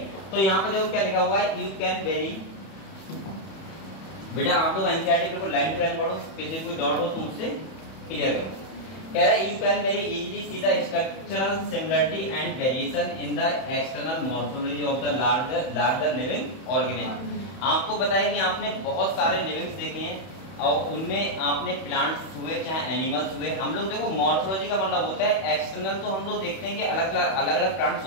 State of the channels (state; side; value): late; right; 31 ms